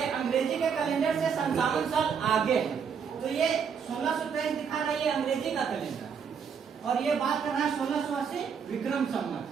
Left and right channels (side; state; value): left; quieter; 6.7 dB